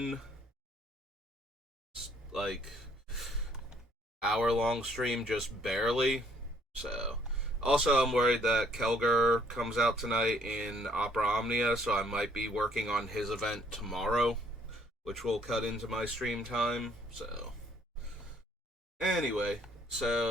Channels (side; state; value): both; normal; correlation 0.64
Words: like, hour-long stream, just barely. So, also, I'm worried that Kelger comes out tonight in Opera Omnia, so I might be working on his event tomorrow, which will cut into my stream time. So, anyway,